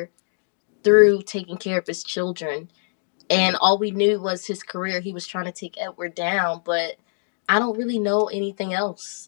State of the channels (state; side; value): silent; right; digital silence